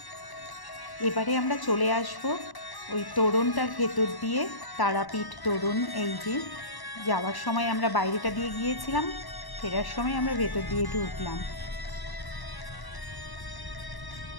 এবারে আমরা চলে আসব ওই তোরণটার ভেতর দিয়ে, তারাপীঠ তোরণ। এই যে যাওয়ার সময় আমরা বাইরেটা দিয়ে গিয়েছিলাম, ফেরার সময় আমরা ভেতর দিয়ে ঢুকলাম।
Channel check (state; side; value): late; right; 1.1 ms